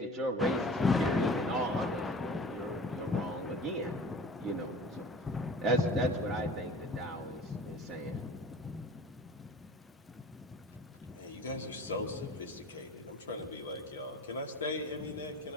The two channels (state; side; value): normal; both; correlation 0.42